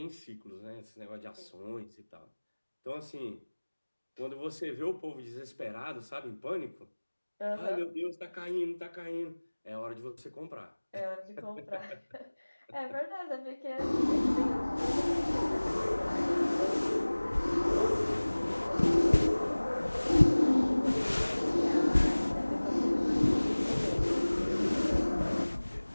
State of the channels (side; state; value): both; inverted; correlation -1.00